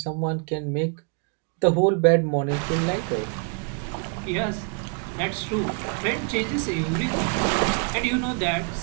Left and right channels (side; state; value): left; quieter; 38.4 dB